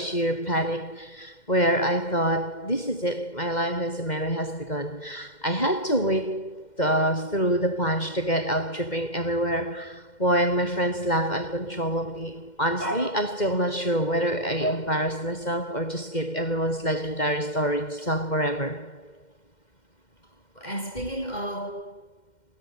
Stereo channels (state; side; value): late; right; 2.1 ms